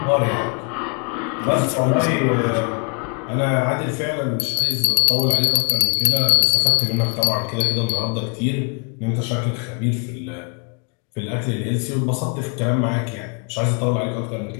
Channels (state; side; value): quieter; right; 38.1 dB